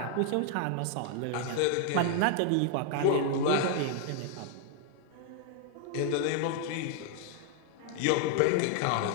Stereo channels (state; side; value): different; both; correlation 0.00